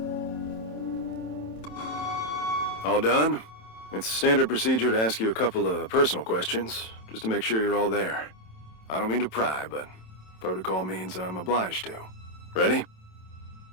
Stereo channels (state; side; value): late; right; 27 ms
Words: All done? It's standard procedure to ask you a couple of personal questions, just to make sure you're all there. I don't mean to pry, but protocol means I'm obliged to. Ready?